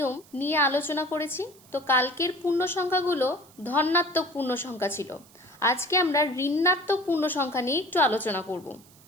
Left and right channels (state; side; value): noise; right; hiss, 26 dB below the sound